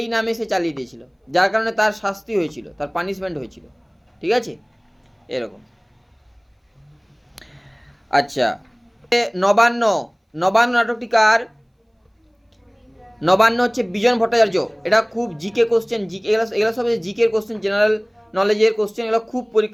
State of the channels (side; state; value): both; identical; correlation 1.00